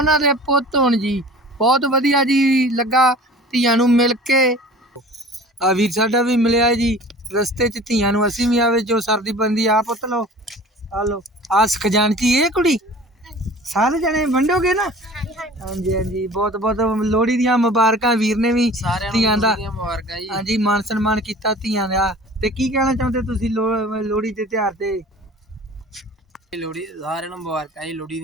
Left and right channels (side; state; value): both; normal; correlation 0.43